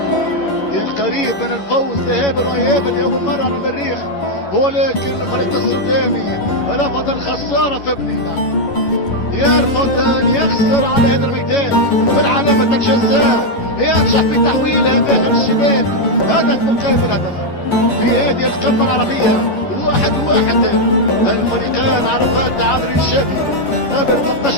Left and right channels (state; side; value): late; right; 11 ms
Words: كان قريب من الفوز ذهابا وايابا لاول مرة على المريخ، ولكن الفريق السوداني رفض الخسارة في بنينا، يرفض ان يخسر على هذا الميدان في علامة الجزاء، ينجح في تحويلها داخل الشباك، هدف مقابل هدف في هذه القمة العربية. 1-1. الفريقان عرفان تعادل ايجابي قبل